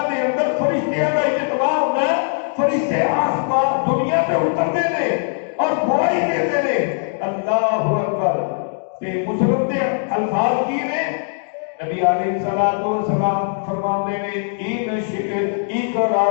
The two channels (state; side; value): silent; right; 66 dB below the other